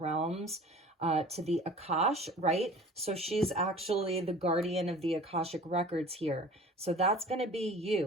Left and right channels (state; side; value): normal; both; correlation 0.44